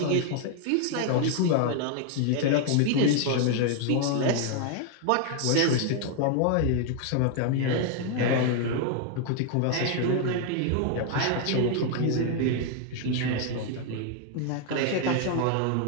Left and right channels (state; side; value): different; both; correlation 0.00